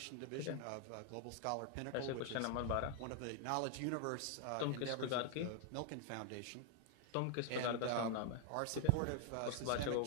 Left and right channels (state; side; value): different; both; correlation 0.00